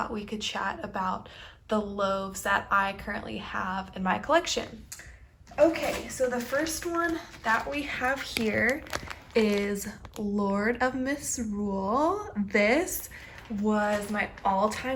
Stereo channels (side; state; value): both; identical; correlation 1.00